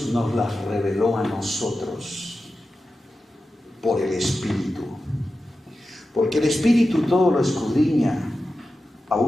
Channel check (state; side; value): normal; both; correlation 0.92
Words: nos las reveló a nosotros por el Espíritu, porque el Espíritu todo lo escudriña